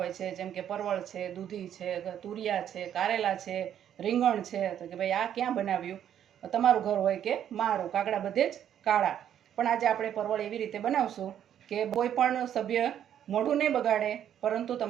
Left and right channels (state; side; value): quieter; left; 10.0 dB